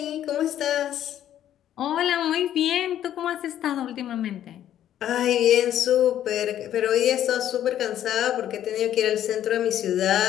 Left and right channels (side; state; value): right; quieter; 11.2 dB